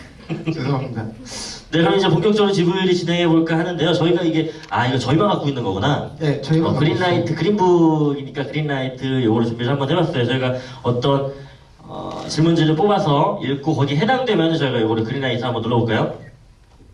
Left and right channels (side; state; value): both; identical; correlation 1.00